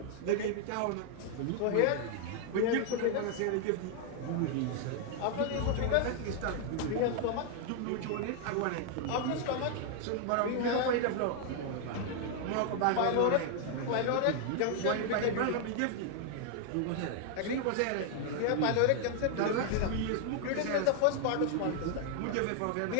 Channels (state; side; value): different; both; correlation 0.00